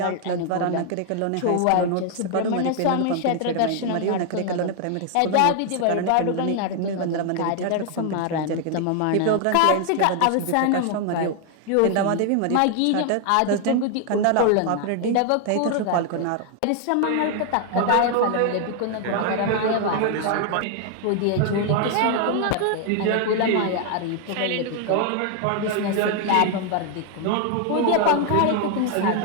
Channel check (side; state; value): both; different; correlation 0.00